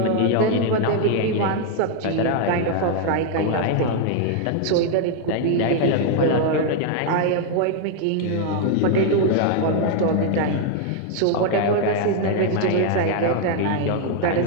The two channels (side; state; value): both; different; correlation 0.00